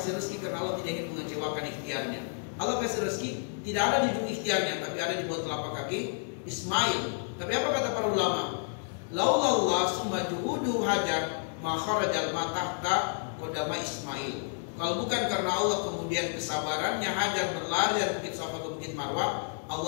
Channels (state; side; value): silent; right; digital silence